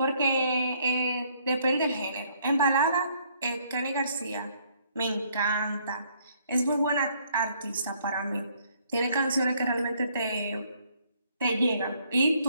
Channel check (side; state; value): both; inverted; correlation -0.66